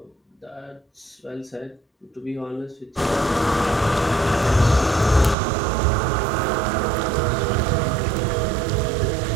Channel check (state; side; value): drops out; left; at 5.4 s